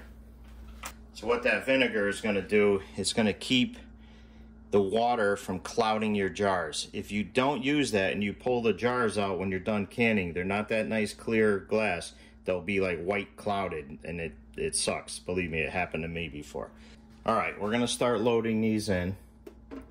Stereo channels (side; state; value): both; identical; correlation 1.00